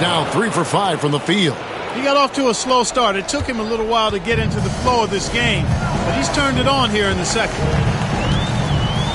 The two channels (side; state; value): both; identical; correlation 1.00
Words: now 3 for 5 from the field. He got off to a slow start. It took him a little while to get into the flow of this game, but he's turned it on here in the second.